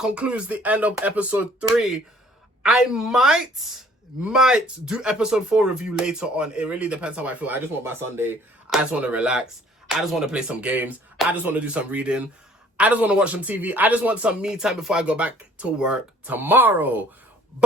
the end of episode 3. I might do episode 4 review later on. It really depends how I feel. I just want my Sunday. I just want to relax. I just want to play some games. I just want to do some reading. I just want to watch some TV. I just want some me time before I go back to work tomorrow.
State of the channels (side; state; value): both; normal; correlation 0.57